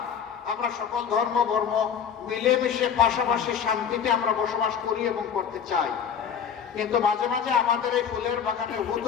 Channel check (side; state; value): right; quieter; 7.7 dB